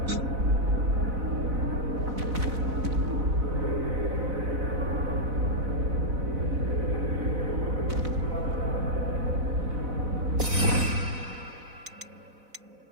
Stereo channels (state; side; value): late; left; 4.0 ms